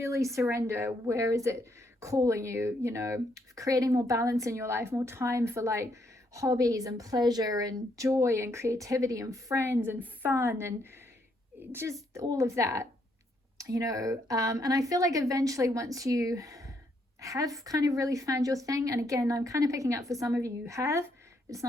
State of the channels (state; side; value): normal; both; correlation 0.73